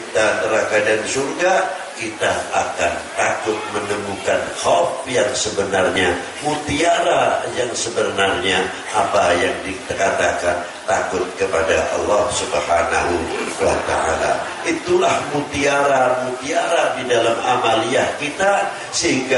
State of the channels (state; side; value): identical; both; correlation 1.00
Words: neraka dan surga, kita akan takut menemukan khauf yang sebenarnya, mutiara yang sebenarnya, apa yang dikatakan takut kepada Allah Subhanahu wa ta'ala. Itulah mutiara-mutiara di dalam amaliyah kita,